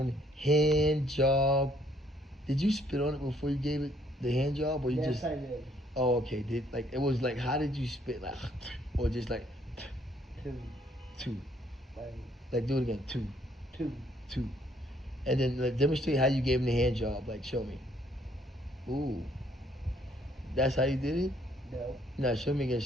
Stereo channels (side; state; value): both; normal; correlation 0.66